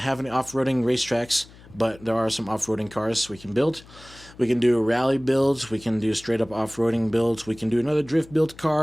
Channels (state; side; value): noise; left; hum, 22 dB below the sound